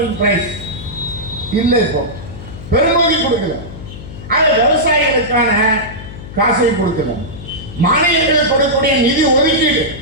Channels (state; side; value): noise; left; hum, 13 dB below the sound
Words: பிரைஸ் இல்லை, இப்போ பெருமதி கொடுக்கல. ஆனா விவசாயிகளுக்கான காசை கொடுக்கல. மாநிலங்களுக்கு கொடுக்கக்கூடிய நிதி ஒதுக்கீடு